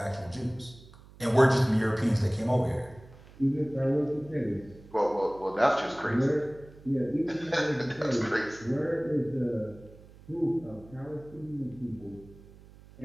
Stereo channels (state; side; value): noise; right; hum, 22 dB below the sound